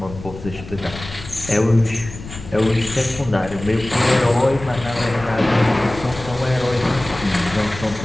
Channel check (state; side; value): noise; left; rumble, 13 dB below the sound